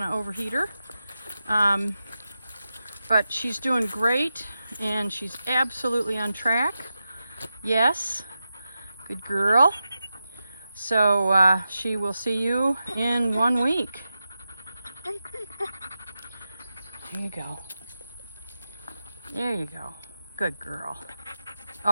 to overheat her. But she's doing great and she's absolutely on track. Yes. Good girl. So she will see you in 1 week. There you go. There you go. Good girl.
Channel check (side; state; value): both; inverted; correlation -0.90